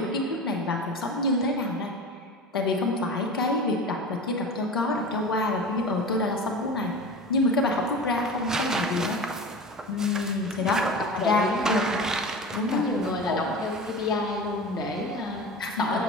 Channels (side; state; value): both; normal; correlation 0.32